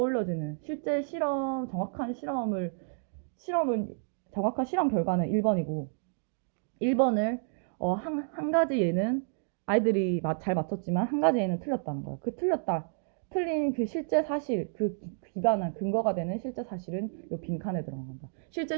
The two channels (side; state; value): left; silent; digital silence